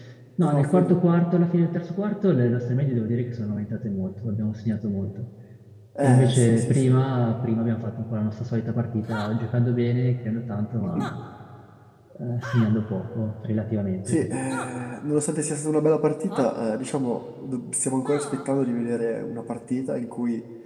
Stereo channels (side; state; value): both; identical; correlation 1.00